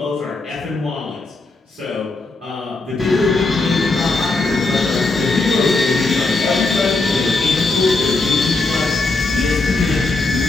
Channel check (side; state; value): right; quieter; 3.4 dB